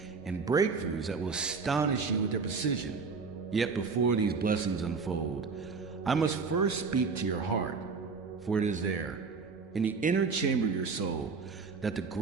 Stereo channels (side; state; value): left; quieter; 4.9 dB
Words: and breakthroughs that will astonish you with their precision. Yet before these blessings unfold, I must first speak to your heart, for it is there, in the inner chamber of your soul, that the